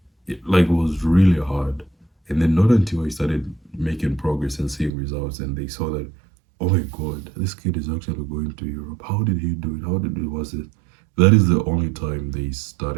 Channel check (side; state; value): left; drops out; at 4.9 s